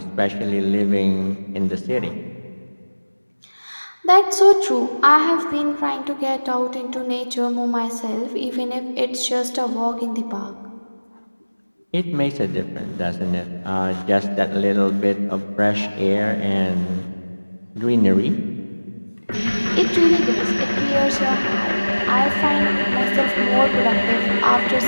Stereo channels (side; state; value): both; inverted; correlation -1.00